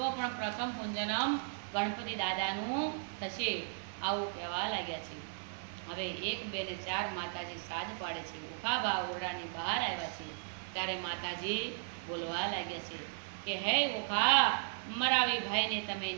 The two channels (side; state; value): left; silent; digital silence